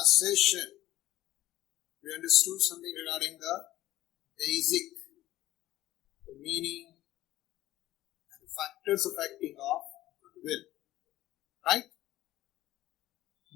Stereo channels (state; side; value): quieter; right; 15.2 dB